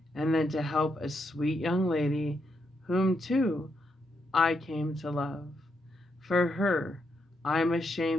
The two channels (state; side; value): normal; both; correlation 0.80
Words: and then to help a sweet young lady, whom too I came to love. For her, I am